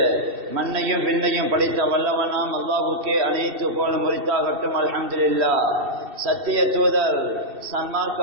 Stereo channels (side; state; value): left; late; 2.7 ms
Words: மண்ணையும் விண்ணையும் படைத்த வல்லவனாம் அல்லாஹ்வுக்கே அனைத்து புகழ் முறித்தாகட்டும். அல்ஹம்துலில்லாஹ். சத்திய தூதர்